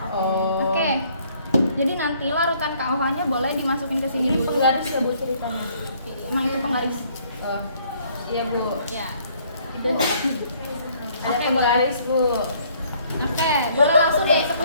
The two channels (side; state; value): both; inverted; correlation -0.63